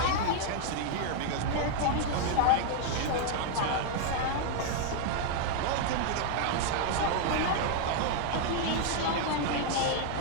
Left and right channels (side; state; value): both; different; correlation 0.00